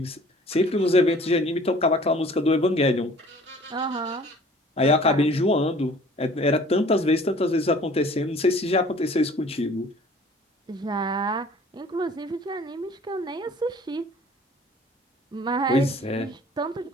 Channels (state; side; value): normal; both; correlation 0.51